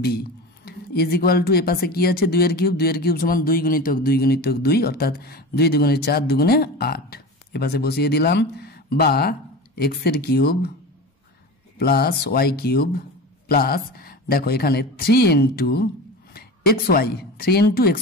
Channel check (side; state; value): both; normal; correlation 0.30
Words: B is equal to এ পাশে কি আছে 2 এর কিউব, 2 এর কিউব সমান 2 গুণিতক 2 গুণিতক 2 অর্থাৎ 2 দুগুণে 4 দুগুণে 8, এ পাশে বসিয়ে দিলাম, বা এক্স এর cube plus Y cube plus দেখো এখানে 3 into x y, 3 into